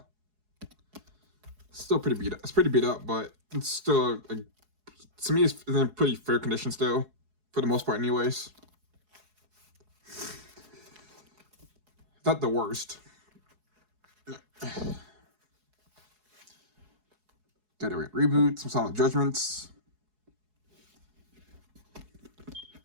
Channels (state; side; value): late; left; 4.7 ms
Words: still pretty beat up. It's pretty beat up, but it's still, like, to me, it's in pretty fair condition still, for the most part, anyways. Not the worst. Gotta reboot, some Solid Judgments.